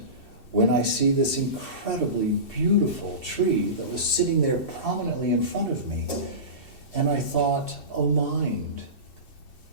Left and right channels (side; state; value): right; late; 2.7 ms